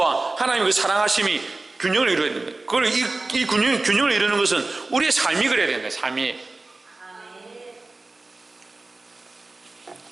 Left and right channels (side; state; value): left; quieter; 3.2 dB